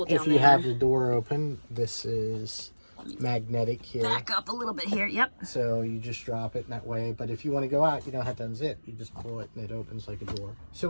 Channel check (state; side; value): inverted; both; correlation -1.00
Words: down there. If you have the door open, this is magnetic here. Back up a little bit here. Yep. So you just drop it in that way. But if you want to go out, you don't have to unzip. You just pull it and it opens like a door. So